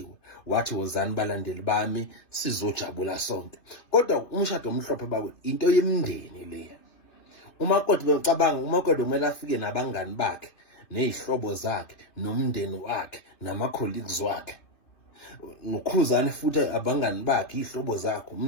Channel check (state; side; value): late; right; 2.9 ms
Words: wathi wozani balandeli bami sizojabula sonke. Kodwa umshado omhlophe bakwe into yemndeni leya. uMakoti becabanga uMakoti kumele afike nabangani bakhe ney'hlobo zakhe nomndeni wakhe nama-colleagues wakhe. NoKhuzani futhi abangani bakhe, iy'hlobo zakhe,